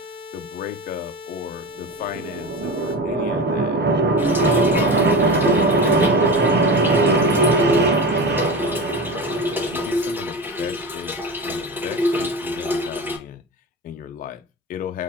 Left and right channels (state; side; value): normal; both; correlation 0.27